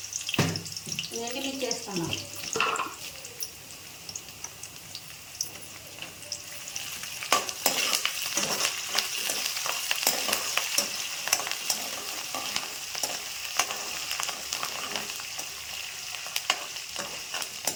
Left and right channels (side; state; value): both; identical; correlation 1.00